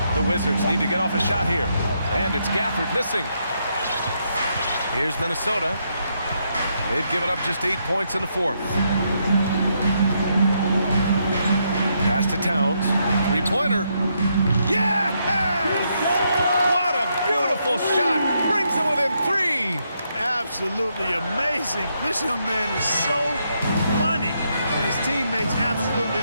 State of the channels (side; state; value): both; inverted; correlation -0.78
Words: The Wizards need to get off a shot here. And it's Gafford missing. Here's Minnesota. They've given up just 8 points in the fourth. Pass to Towns. Three-pointer. Yes! What a beautiful shot. Brings them within 3. Absolutely amazing. This young man is so money. And his teammates absolutely